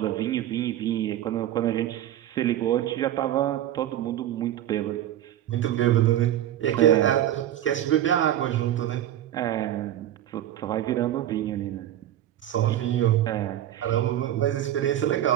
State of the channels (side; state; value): left; quieter; 12.2 dB